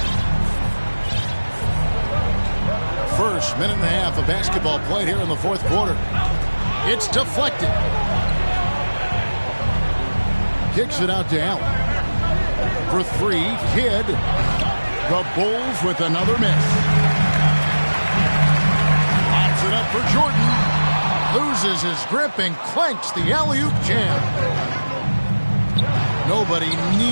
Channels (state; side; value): inverted; both; correlation -1.00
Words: First minute and a half of basketball played here in the fourth quarter. It's deflected. Kicks it out to Allen. For 3, Kidd. The Bulls with another miss. Pops it up for Jordan. Loses his grip and clanks the alley-oop jam. Nobody